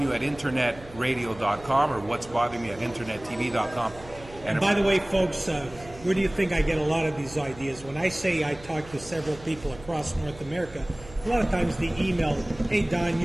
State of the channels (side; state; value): right; noise; hum, 19 dB below the sound